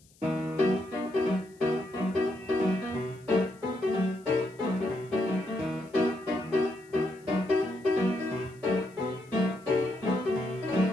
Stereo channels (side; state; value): left; noise; hiss, 29 dB below the sound